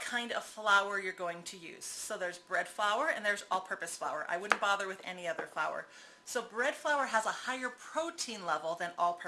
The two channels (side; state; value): both; identical; correlation 1.00